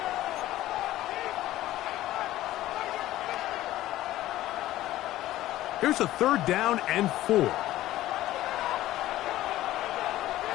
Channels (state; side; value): quieter; right; 15.0 dB